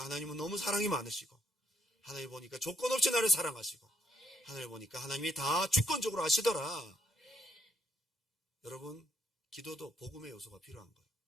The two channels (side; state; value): both; normal; correlation 0.72